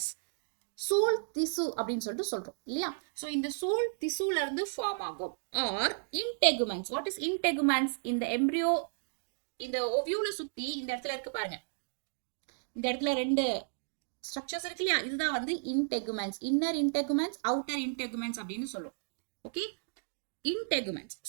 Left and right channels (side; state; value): left; silent; digital silence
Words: சூல் திசு அப்படின்னு சொல்லிட்டு சொல்றோம் இல்லையா? ஸோ இந்த சூல் திசுல இருந்து ஃபார்ம் ஆகும். Or integuments. What is integuments? இந்த எம்ப்ரியோ இந்த ஓவியூல சுத்தி இந்த இடத்துல இருக்கு பாருங்க, இந்த இடத்துல 2 ஸ்ட்ரக்சர்ஸ் இருக்கு இல்லையா, இதுதான் வந்து இன்டெகுமெண்ட்ஸ். இன்னர் இன்டெகுமெண்ட்ஸ், அவுட்டர் இன்டெகுமெண்ட்ஸ் அப்படின்னு சொல்லுவோம். ஓகே, இன்டெகுமெண்ட்ஸ்.